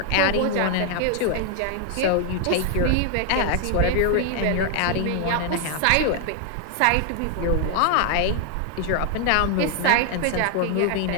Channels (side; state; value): both; different; correlation 0.00